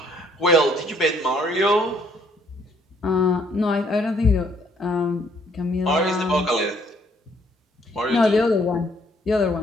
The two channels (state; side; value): normal; both; correlation 0.65